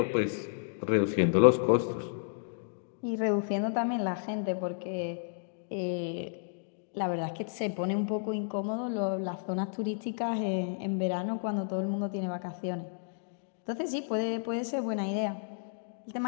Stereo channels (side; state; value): right; silent; digital silence